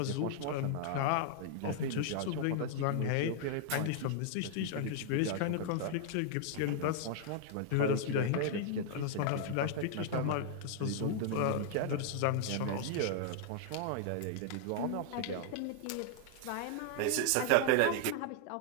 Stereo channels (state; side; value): different; both; correlation 0.00